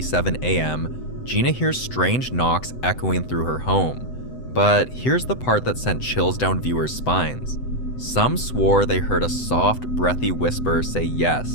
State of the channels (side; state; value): right; late; 7.9 ms